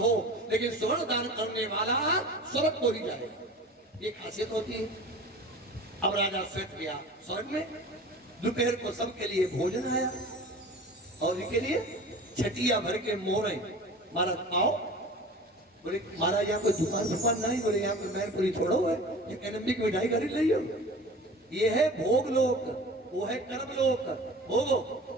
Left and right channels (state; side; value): normal; both; correlation 0.39